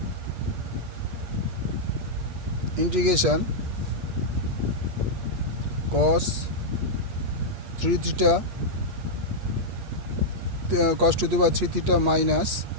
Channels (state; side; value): late; left; 8.4 ms